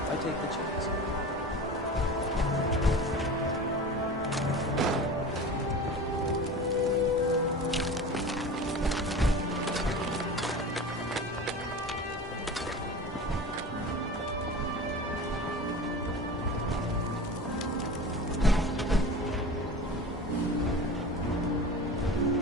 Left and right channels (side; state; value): both; normal; correlation 0.34